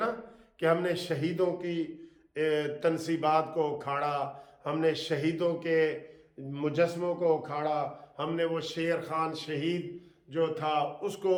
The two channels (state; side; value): identical; both; correlation 1.00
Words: کہ ہم نے شہیدوں کی تنصیبات کو اکھاڑا، ہم نے شہیدوں کے مجسموں کو اکھاڑا، ہم نے وہ شیر خان شہید جو تھا اس کو